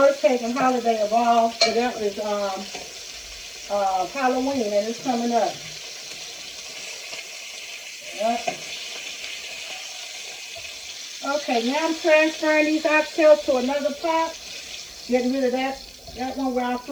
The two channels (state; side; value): noise; right; hiss, 25 dB below the sound